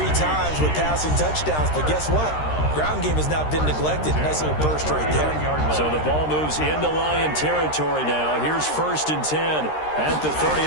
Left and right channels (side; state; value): right; late; 13 ms